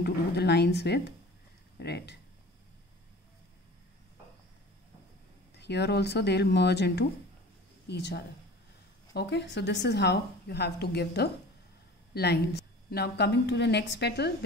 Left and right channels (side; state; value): both; normal; correlation 0.41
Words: to do the lines with red. Here also they will merge into each other. Okay, so this is how you have to give the lines. Now coming to the next petal,